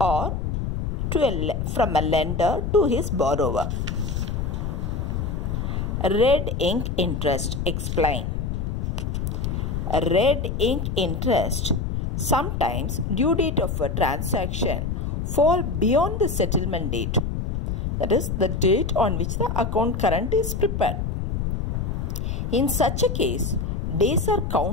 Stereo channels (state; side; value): noise; left; rumble, 2 dB below the sound